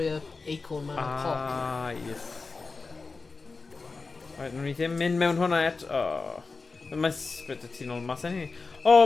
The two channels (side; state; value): right; quieter; 4.1 dB